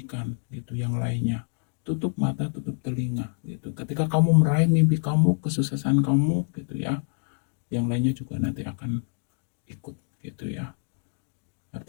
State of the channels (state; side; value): silent; right; 60 dB below the other